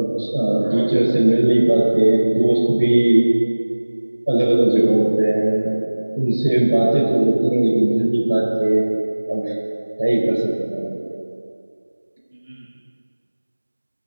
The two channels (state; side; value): inverted; both; correlation -1.00